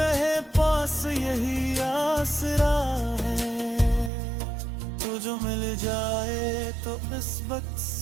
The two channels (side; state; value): left; drops out; at 4.1 s